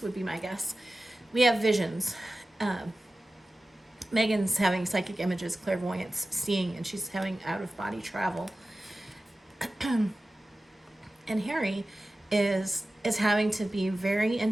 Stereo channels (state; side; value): normal; both; correlation 0.95